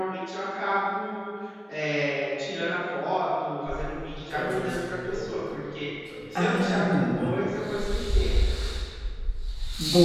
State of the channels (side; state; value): both; identical; correlation 1.00